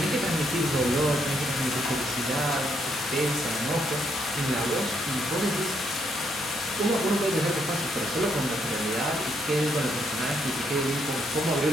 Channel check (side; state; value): both; normal; correlation 0.74